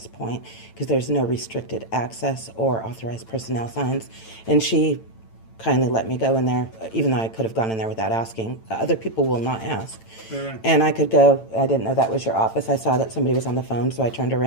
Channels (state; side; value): late; right; 9.0 ms